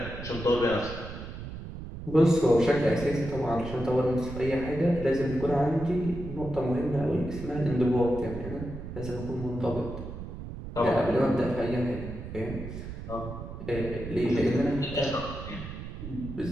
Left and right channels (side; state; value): right; noise; rumble, 9 dB below the sound